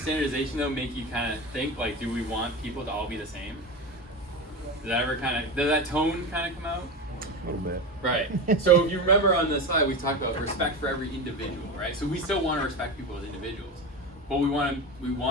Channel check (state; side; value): normal; both; correlation 0.23